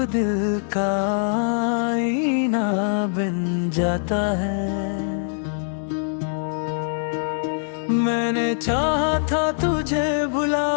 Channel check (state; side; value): silent; right; digital silence